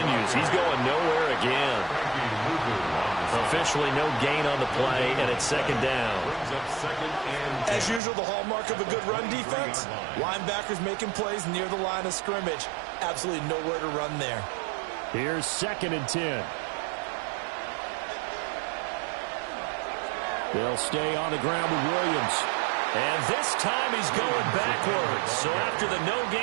He's going nowhere again. Officially no gain on the play, and it's 2nd down. As usual, the hallmark of a good run defense, linebackers making plays near the line of scrimmage. Absolutely nowhere to run there. Here's 2nd and 10. They'll stay on the ground with Williams. And this time he's going backwards. So after the no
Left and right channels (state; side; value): drops out; left; at 8.0 s